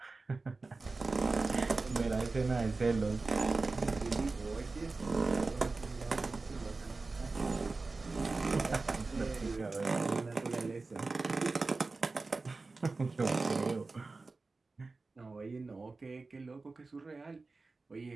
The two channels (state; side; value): quieter; left; 3.7 dB